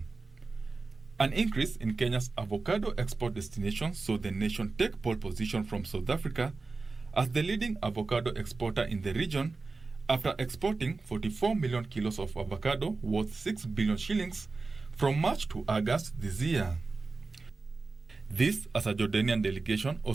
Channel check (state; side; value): quieter; left; 3.9 dB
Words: An increase in Kenya's avocado export destinations saw the nation take pole position from South Africa as the leading avocado exporter in the region after exporting 44 million kilos of avocado worth 6 billion shillings from March to August this year. This, as a Jordanian delegation